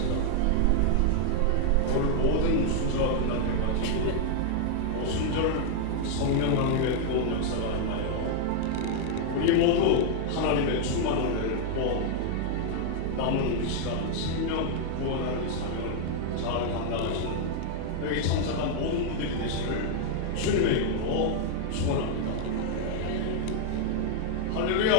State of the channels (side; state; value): both; different; correlation 0.00